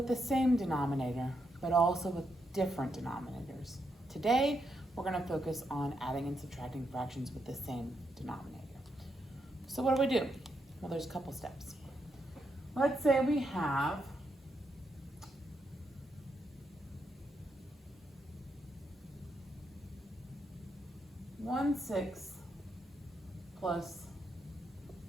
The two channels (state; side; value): normal; both; correlation 0.81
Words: the same denominator, but also with different denominators. Today, we're going to focus on adding and subtracting fractions with the same denominator. So what do? Well, there's a couple steps. Let's say we have 1/6 plus